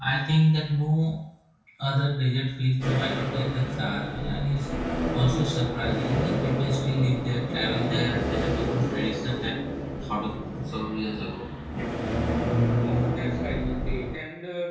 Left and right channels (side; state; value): both; identical; correlation 1.00